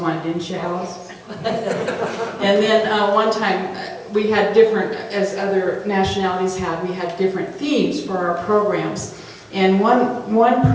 didn't you, Alice? And then one time, we had different, as other nationalities had, we had different themes for our programs. And one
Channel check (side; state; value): both; identical; correlation 1.00